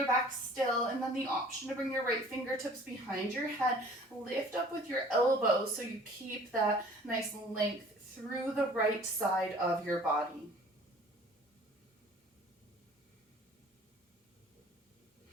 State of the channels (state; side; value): normal; both; correlation 0.50